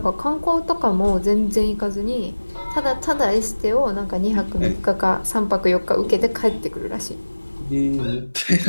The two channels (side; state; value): both; inverted; correlation -1.00